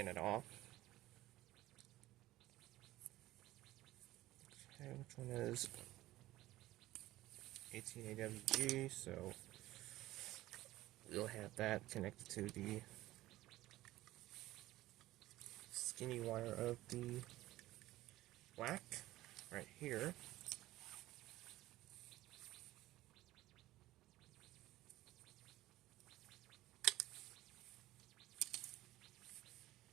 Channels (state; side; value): quieter; left; 16.4 dB